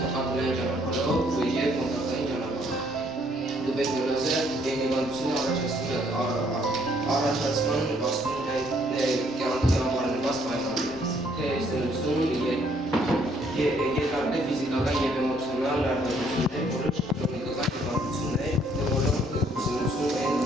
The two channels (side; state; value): both; normal; correlation 0.66